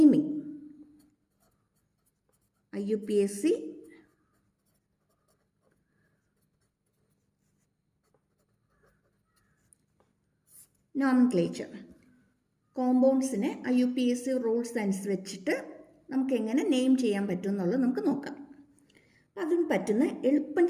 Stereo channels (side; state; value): both; identical; correlation 1.00